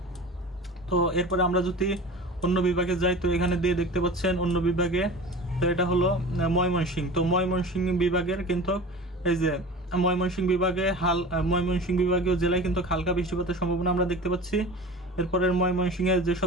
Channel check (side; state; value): both; normal; correlation 0.36